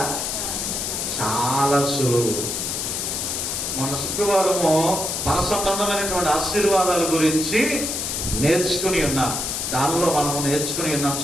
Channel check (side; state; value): left; noise; hiss, 2 dB below the sound